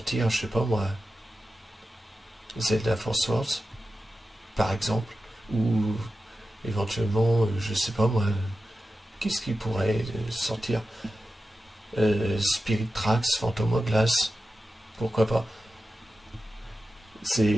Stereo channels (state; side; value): normal; both; correlation 0.92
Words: je sais pas moi, Zelda Force Wars par exemple, ou éventuellement je sais pas moi, qu'est-ce qui pourrait sortir, Spirit Tracks, Phantom Hourglass, pourquoi pas.